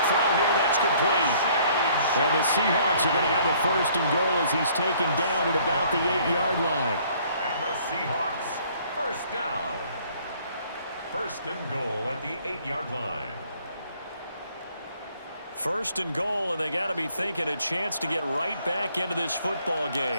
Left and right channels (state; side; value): inverted; both; correlation -0.60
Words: throw here, that's complete. And the Seahawks are going to have a 1st and goal as he's taken down at about the 8-yard line. And the Seahawks, 1st down. 1st and goal at the 8-yard line. 1st and goal, and they got to be thinking a chance to get right back into this football